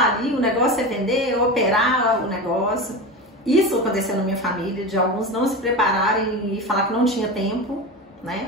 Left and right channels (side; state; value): both; normal; correlation 0.24